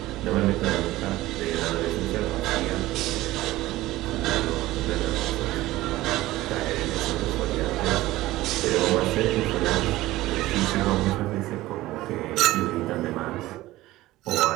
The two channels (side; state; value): left; quieter; 17.1 dB